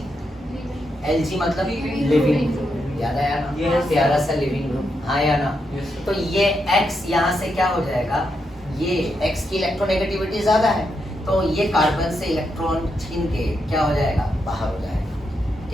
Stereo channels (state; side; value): normal; both; correlation 0.82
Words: Lg मतलब लिविंग, याद आया ना? Yes. प्यारा सा लिविंग ग्रुप, हाँ या ना? तो ये X यहाँ से क्या हो जाएगा? ये X की इलेक्ट्रोनेगेटिविटी ज्यादा है, तो ये कार्बन से इलेक्ट्रॉन छीन के क्या हो जाएगा? बाहर हो जाएगा,